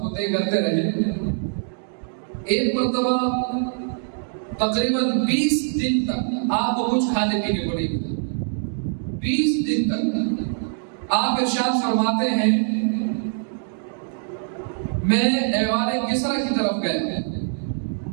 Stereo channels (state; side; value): silent; left; digital silence